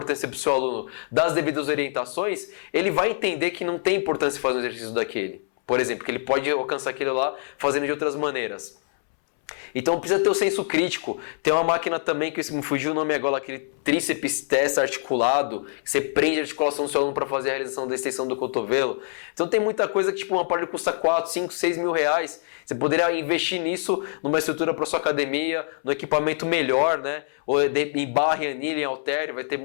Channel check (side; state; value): right; silent; 62 dB below the other